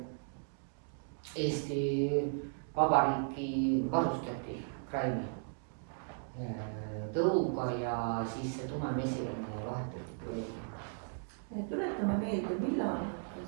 Eesti Vabariiki varustati kraini tõuga ja siis see tumemesilane vahetati. Tuletame meelde, millal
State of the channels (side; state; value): left; silent; digital silence